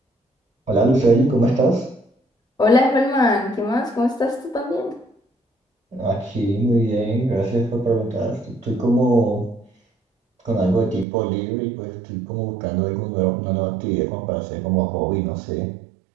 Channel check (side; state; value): left; drops out; at 11.1 s